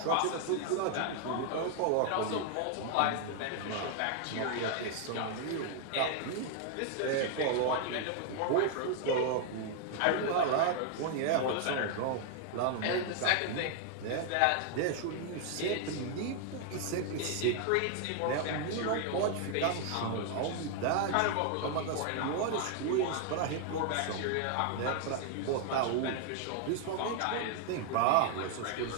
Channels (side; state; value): both; different; correlation 0.00